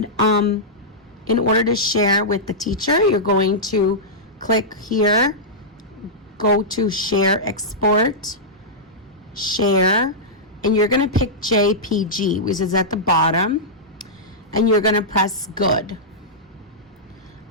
in order to share with the teacher, you're going to click here, go to share, export, share, and you're going to pick JPG, which is at the bottom, and you're going to press good.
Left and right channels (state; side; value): normal; both; correlation -0.12